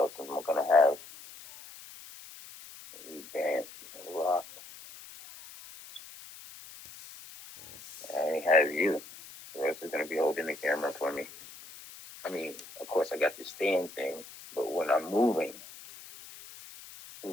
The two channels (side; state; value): left; noise; hiss, 17 dB below the sound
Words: am I gonna have? We dance, rock. I only have you. Who else is gonna be holding the camera for me? I mean, of course, I got the stand thing, but when I'm moving,